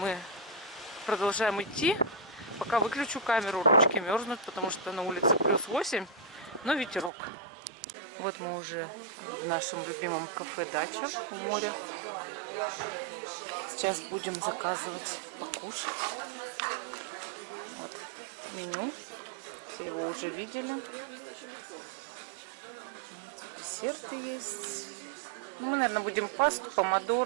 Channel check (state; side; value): drops out; left; at 7.1 s